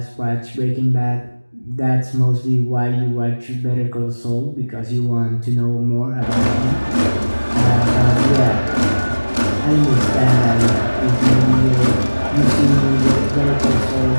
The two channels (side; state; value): both; inverted; correlation -1.00